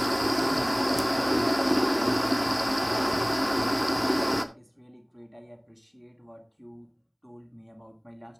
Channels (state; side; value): identical; both; correlation 1.00